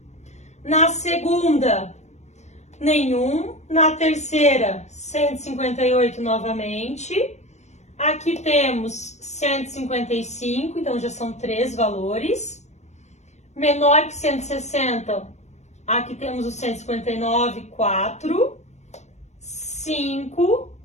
Na segunda, nenhum. Na terceira, 158 novamente. Aqui temos 155, então já são 3 valores. Menor que 160, aqui temos o 159, 4, 5,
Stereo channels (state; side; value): late; right; 0.33 ms